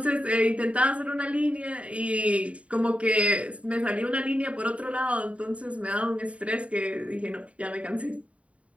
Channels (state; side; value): late; left; 0.065 ms